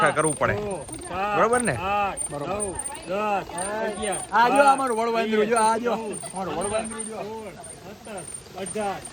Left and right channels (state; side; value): identical; both; correlation 1.00